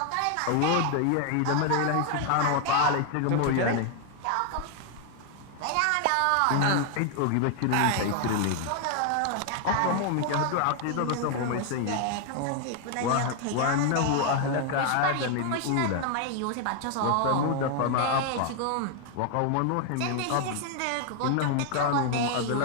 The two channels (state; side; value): different; both; correlation 0.00